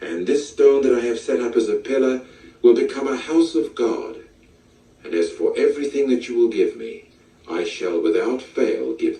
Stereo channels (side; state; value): both; identical; correlation 1.00